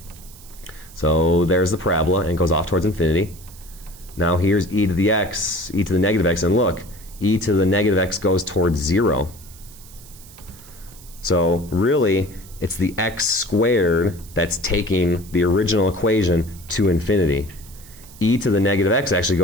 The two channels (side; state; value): right; noise; hiss, 21 dB below the sound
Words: So there's the parabola, and it goes off towards infinity. Now here's e to the x, e to the negative x, and look, e to the negative x goes towards 0. So really, it's the x squared that's taking the original equation to infinity. E to the negative x actually